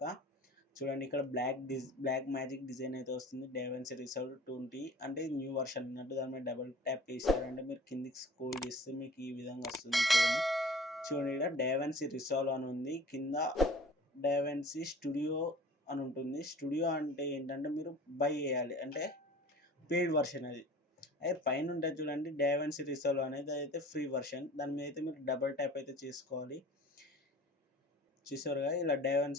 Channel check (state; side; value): normal; both; correlation 0.44